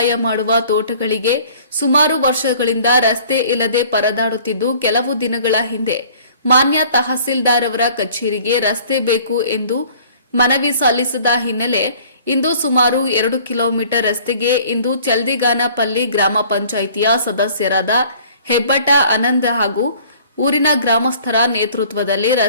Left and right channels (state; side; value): inverted; both; correlation -0.52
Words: ಮಾಡುವ ತೋಟಗಳಿಗೆ ಸುಮಾರು ವರ್ಷಗಳಿಂದ ರಸ್ತೆ ಇಲ್ಲದೆ ಪರದಾಡುತ್ತಿದ್ದು, ಕೆಲವು ದಿನಗಳ ಹಿಂದೆ ಮಾನ್ಯ ತಹಸೀಲ್ದಾರ್ ಅವರ ಕಚೇರಿಗೆ ರಸ್ತೆ ಬೇಕು ಎಂದು ಮನವಿ ಸಲ್ಲಿಸಿದ ಹಿನ್ನೆಲೆ ಇಂದು ಸುಮಾರು 2 ಕಿಲೋಮೀಟರ್ ರಸ್ತೆಗೆ ಇಂದು ಚಲ್ದಿಗಾನಪಲ್ಲಿ ಗ್ರಾಮ ಪಂಚಾಯಿತಿಯ ಸದಸ್ಯರಾದ ಹೆಬ್ಬಟ ಆನಂದ್ ಹಾಗೂ ಊರಿನ ಗ್ರಾಮಸ್ಥರ ನೇತೃತ್ವದಲ್ಲಿ